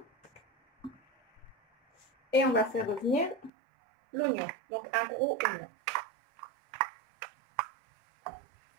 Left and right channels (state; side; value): drops out; left; at 3.5 s